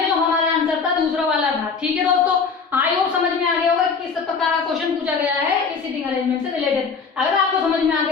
जो हमारा आंसर था दूसरा वाला था। ठीक है दोस्तों, आई होप समझ में आ गया होगा किस प्रकार का क्वेश्चन पूछा गया है इस सीटिंग अरेंजमेंट से रिलेटेड। अगर आपको समझ में आ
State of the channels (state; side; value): quieter; right; 5.3 dB